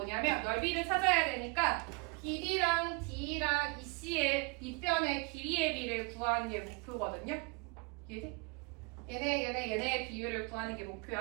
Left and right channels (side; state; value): left; quieter; 29.8 dB